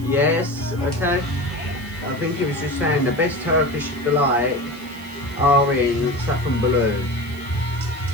Yes, okay. I think he was just saying the best Turkish delight are in Safranbolu.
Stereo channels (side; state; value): right; noise; hiss, 23 dB below the sound